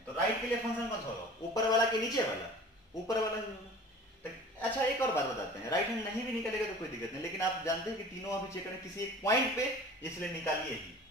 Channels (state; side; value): normal; both; correlation 0.43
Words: तो राइट के लिए फंक्शन कौन सा होगा, ऊपर वाला कि नीचे वाला, ऊपर वाला ही होगा। तो अच्छा एक और बात बताते हैं, राइट हैंड नहीं भी निकलेगा तो कोई दिक्कत नहीं, लेकिन आप जानते हैं कि तीनों अभी चेक करें किसी एक पॉइंट पे, इसलिए निकालिए ही।